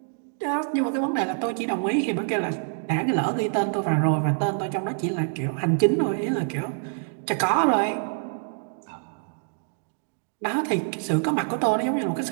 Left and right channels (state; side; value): silent; left; digital silence